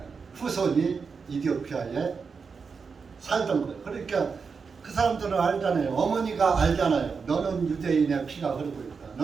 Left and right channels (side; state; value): left; quieter; 5.3 dB